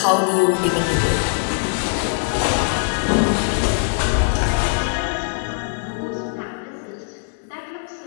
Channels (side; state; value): right; silent; 65 dB below the other